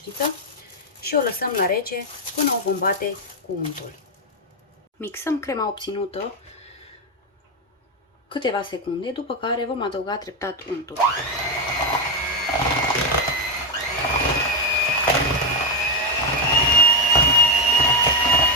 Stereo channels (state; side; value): normal; both; correlation 0.06